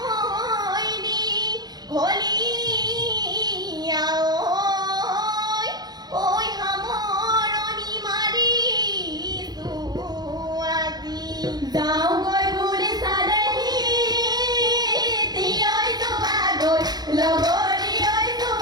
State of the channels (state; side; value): late; left; 0.19 ms